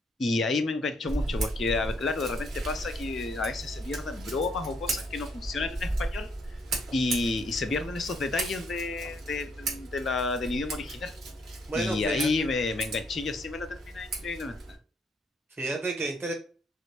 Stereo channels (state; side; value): normal; both; correlation 0.70